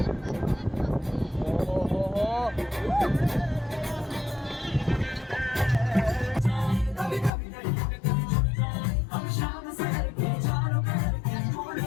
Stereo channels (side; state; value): right; drops out; at 7.3 s